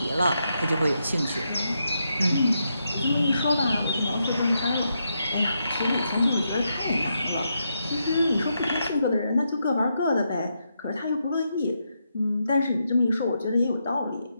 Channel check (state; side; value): inverted; both; correlation -0.82